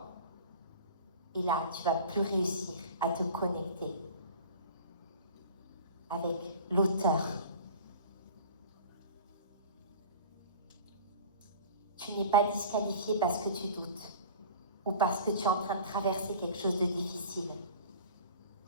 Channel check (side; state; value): both; inverted; correlation -0.41